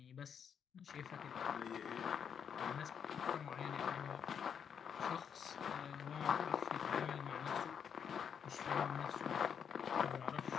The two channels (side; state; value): right; quieter; 7.6 dB